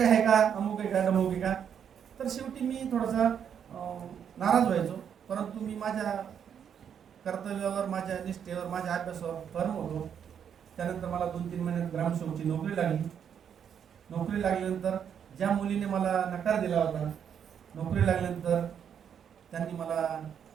आहे का, अमुक आहे का, डमुक आहे का. तर शेवटी मी थोडासा नाराज व्हायचो, परंतु मी माझ्या कर्तव्यावर, माझ्या निष्ठेवर, माझ्या अभ्यासावर फर्म होतो. त्यानंतर मला 2-3 महिन्यात ग्रामसेवकची नोकरी लागली. नोकरी लागल्यानंतर ज्या मुलीने मला नकार दिला होता, नोकरी लागल्यानंतर त्यांनी मला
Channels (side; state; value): left; quieter; 8.2 dB